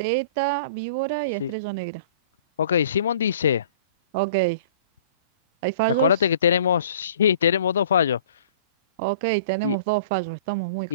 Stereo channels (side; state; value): both; inverted; correlation -0.46